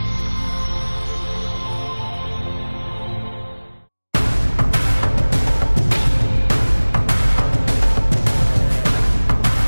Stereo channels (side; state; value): both; inverted; correlation -1.00